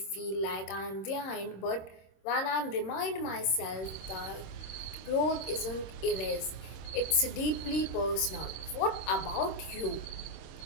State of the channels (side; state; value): right; late; 26 ms